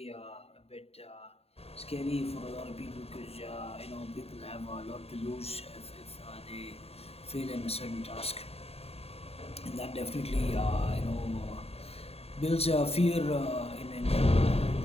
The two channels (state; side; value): late; right; 0.29 ms